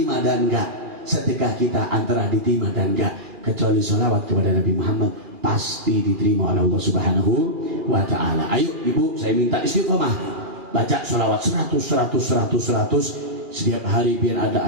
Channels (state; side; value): late; left; 2.4 ms